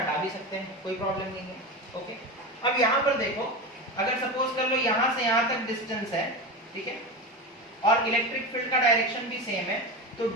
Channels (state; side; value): normal; both; correlation 0.22